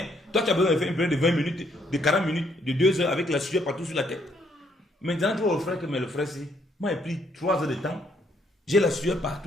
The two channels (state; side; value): normal; both; correlation 0.70